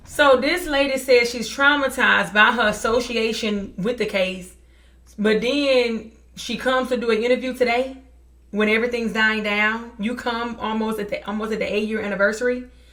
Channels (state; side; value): identical; both; correlation 1.00